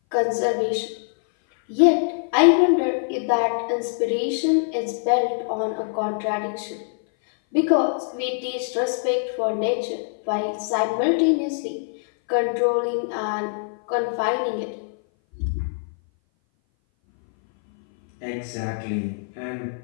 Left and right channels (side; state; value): right; silent; 58 dB below the other